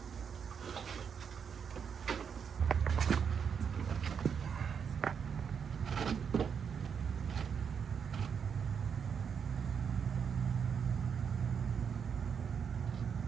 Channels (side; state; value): left; quieter; 6.9 dB